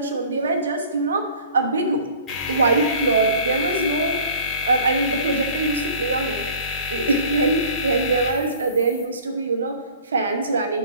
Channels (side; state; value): both; inverted; correlation -0.47